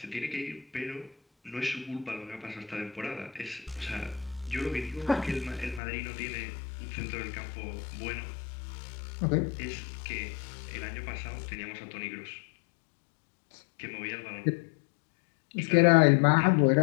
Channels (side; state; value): right; drops out; at 5.8 s